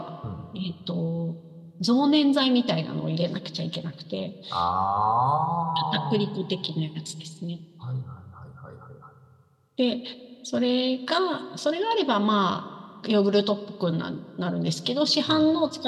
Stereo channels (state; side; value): identical; both; correlation 1.00